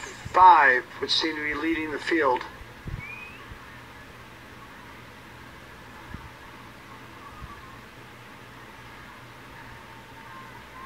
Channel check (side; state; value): both; identical; correlation 1.00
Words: which seem to be leading the field.